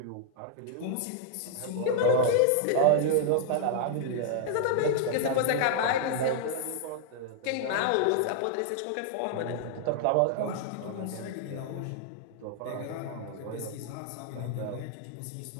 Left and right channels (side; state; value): both; different; correlation -0.01